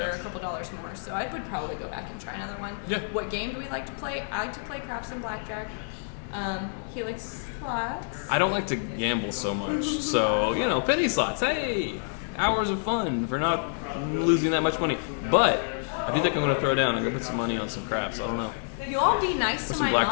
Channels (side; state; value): right; silent; digital silence